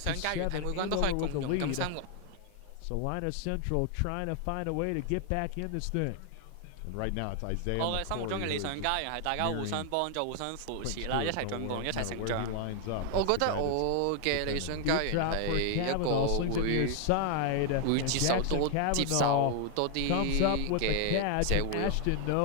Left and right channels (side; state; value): both; different; correlation 0.00